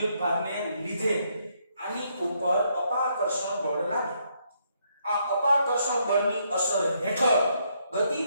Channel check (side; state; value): both; inverted; correlation -0.74